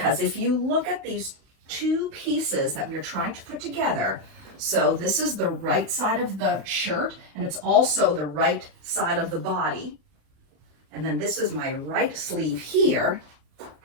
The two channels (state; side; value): late; left; 31 ms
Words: if you look at these two pieces that we are trying to put together, so this is the right side of the shirt, and it's also the right side of the body. And then this is my right sleeve here.